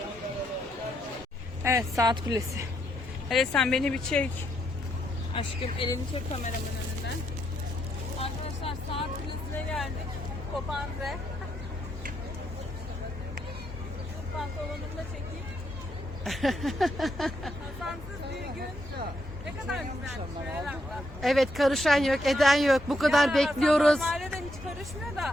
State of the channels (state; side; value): normal; both; correlation 0.78